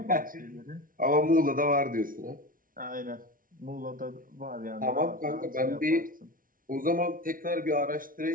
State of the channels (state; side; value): late; left; 0.40 ms